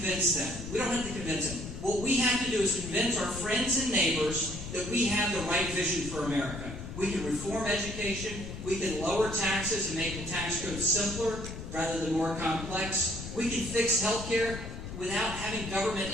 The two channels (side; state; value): left; noise; rumble, 9 dB below the sound